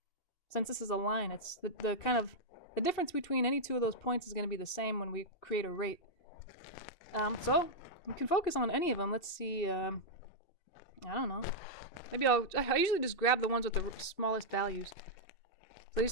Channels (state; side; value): late; right; 2.7 ms